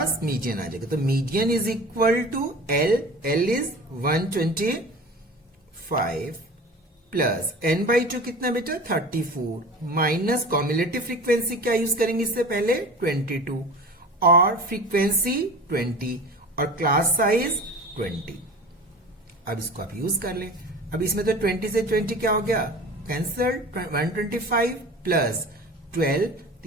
मीडियन आ जाएगा। तो median is equal to L is 125 plus n/2 कितना बेटा? 34 माइनस कॉम्युलेटिव फ्रीक्वेंसी क्या यूज करेंगे इससे पहले? 22, और फ्रीक्वेंसी 20, और क्लास साइज 20। अब इसको आप यूज कर लें। अब इसमें तो 20 से 20 क्या हो गया? कैंसल। 125 प्लस 12,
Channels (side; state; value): both; normal; correlation 0.37